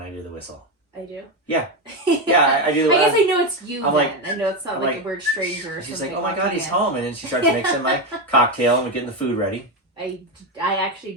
I do the whistle. I do? Yeah. Yeah, I do. I guess I know it's you I'm then. like, I know it's not like a weird stranger or she's something. like, oh my god, he's home. And then she starts mixing my cocktail and we're getting the food ready. I actually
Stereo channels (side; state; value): both; normal; correlation 0.12